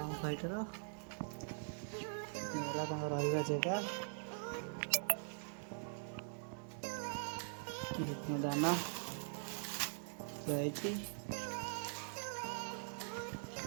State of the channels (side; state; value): left; silent; digital silence